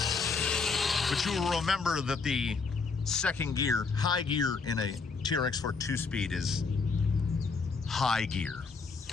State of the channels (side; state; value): right; quieter; 4.7 dB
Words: But you will remember that the second gear, high gear in a TRX4 2-speed is high gear.